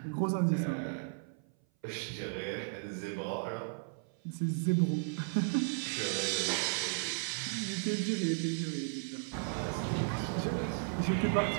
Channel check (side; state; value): left; silent; 55 dB below the other